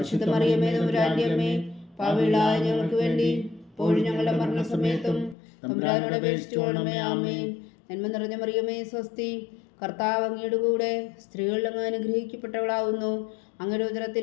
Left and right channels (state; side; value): drops out; right; at 5.4 s